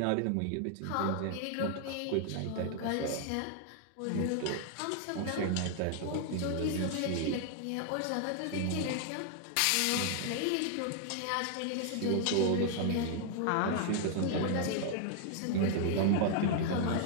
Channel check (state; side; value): different; both; correlation 0.00